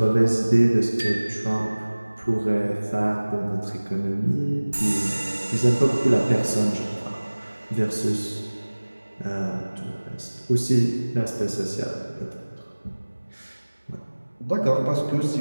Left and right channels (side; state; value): both; inverted; correlation -1.00